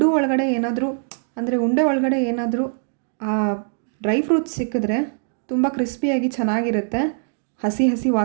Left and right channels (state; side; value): silent; left; digital silence